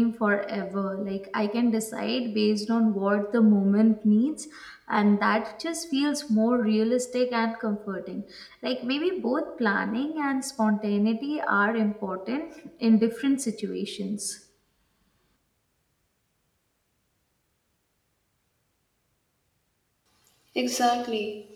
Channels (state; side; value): identical; both; correlation 1.00